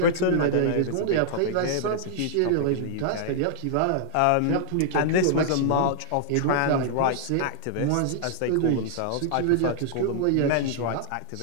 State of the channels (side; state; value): both; different; correlation -0.01